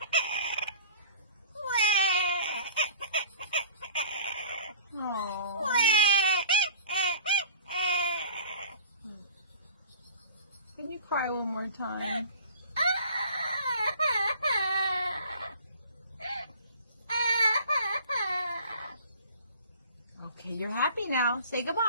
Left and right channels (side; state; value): both; inverted; correlation -0.46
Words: Oh. Can you cry one more time? Okay, you're happy now. Say